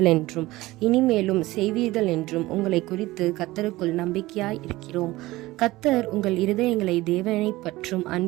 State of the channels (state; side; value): quieter; left; 18.7 dB